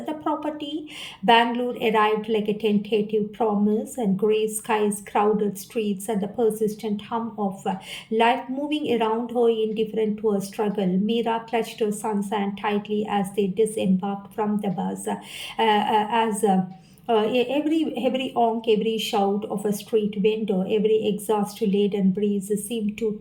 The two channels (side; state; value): both; identical; correlation 1.00